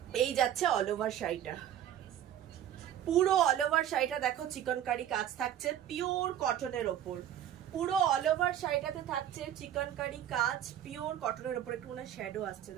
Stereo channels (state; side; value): quieter; left; 10.8 dB